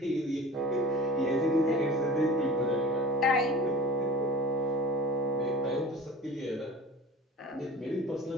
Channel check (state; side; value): normal; both; correlation 0.39